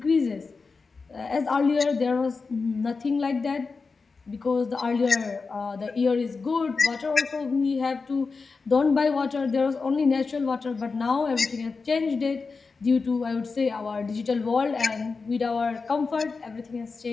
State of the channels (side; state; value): right; quieter; 4.5 dB